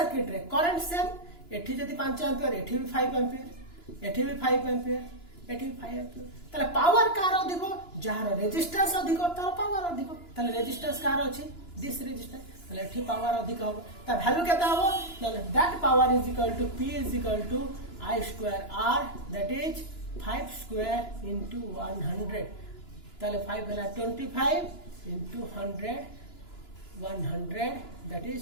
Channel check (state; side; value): late; right; 2.9 ms